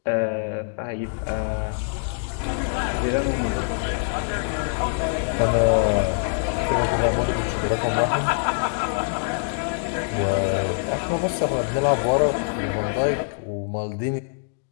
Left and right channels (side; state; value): right; silent; digital silence